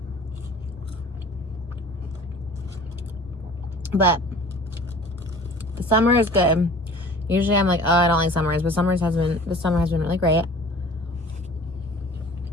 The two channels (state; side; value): normal; both; correlation 0.45